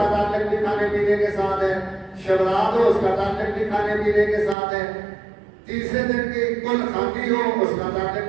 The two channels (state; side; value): drops out; left; at 4.5 s